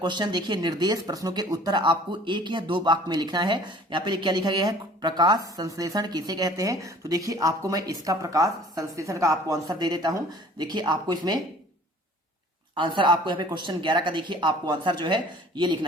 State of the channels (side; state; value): both; normal; correlation 0.50